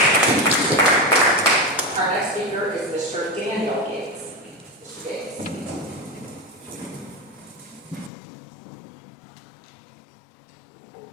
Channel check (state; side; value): drops out; right; at 8.1 s